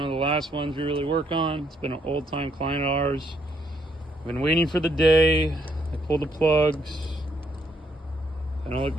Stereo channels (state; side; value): normal; both; correlation 0.72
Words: of the last ones we really work on. It's been an old time client of ours. Been waiting for the day. I pulled the plugs. They don't look